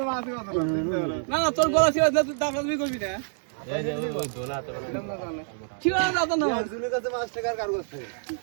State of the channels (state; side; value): silent; left; digital silence